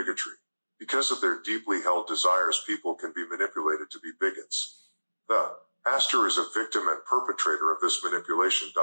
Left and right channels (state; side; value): inverted; both; correlation -1.00